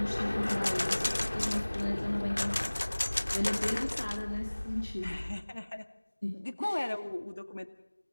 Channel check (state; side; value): inverted; both; correlation -1.00